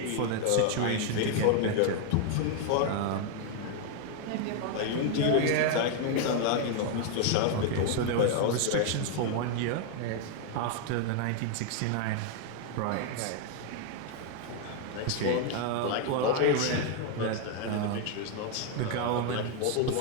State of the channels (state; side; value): different; both; correlation 0.00